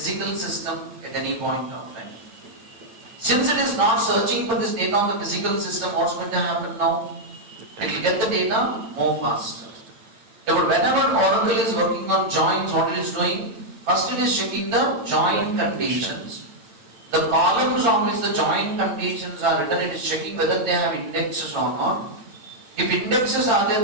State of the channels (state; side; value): late; left; 8.9 ms